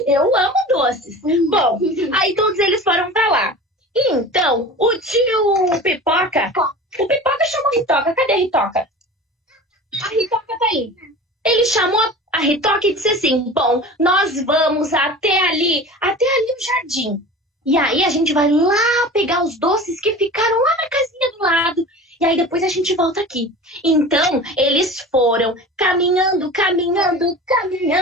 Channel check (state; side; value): normal; both; correlation 0.36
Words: Eu amo doces. Bom, aí todos eles foram pra lá. E então, o tio Pipoca... O Pipoca chamou a Ritoca. Cadê a Ritoca? A Ritoca tá aí. Ele chamou a Ritoca e disse assim, bom, nós vamos até ali o jardim. E aí a gente vai lá pegar os doces que ficaram lá na casinha do lado. E aí depois a gente volta aqui. Então, eles foram caminhando,